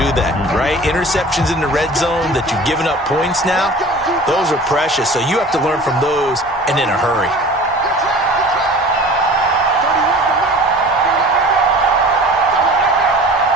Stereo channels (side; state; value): both; normal; correlation 0.42